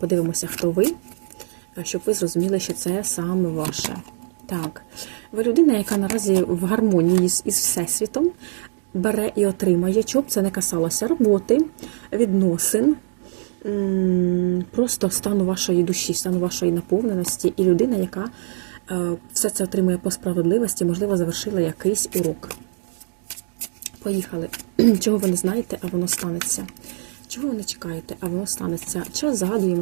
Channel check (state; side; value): silent; left; digital silence